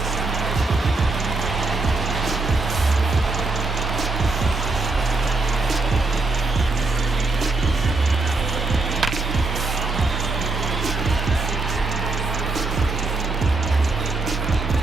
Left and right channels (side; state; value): left; quieter; 3.5 dB